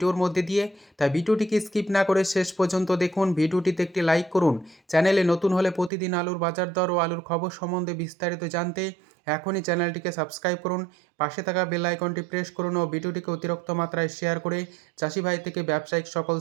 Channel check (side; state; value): left; drops out; at 5.9 s